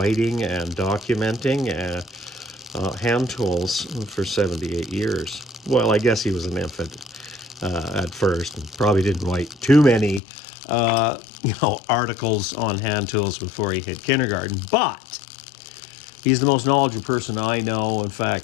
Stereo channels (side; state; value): right; drops out; at 10.2 s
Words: and documenting hand tools for 78 years. Well, I guess he was an infant at first and probably didn't write too many articles on hand tools before he hit kindergarten, but he's the most knowledgeable person I know. In